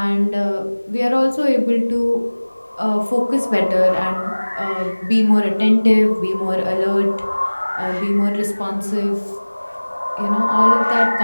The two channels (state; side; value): inverted; both; correlation -1.00